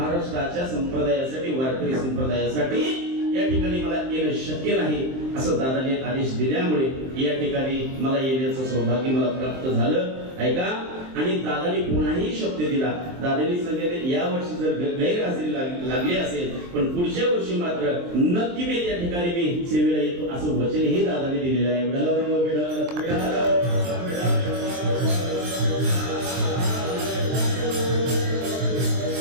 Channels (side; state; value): left; late; 23 ms